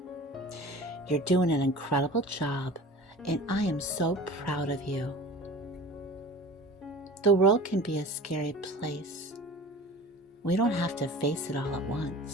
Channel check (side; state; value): both; normal; correlation 0.40